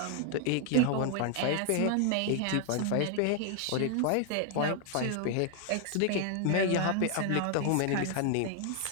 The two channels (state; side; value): different; both; correlation 0.00